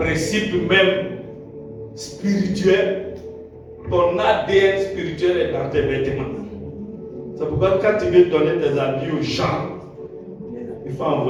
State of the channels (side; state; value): both; identical; correlation 1.00